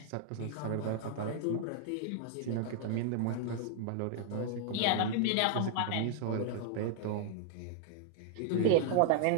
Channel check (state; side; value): different; both; correlation -0.01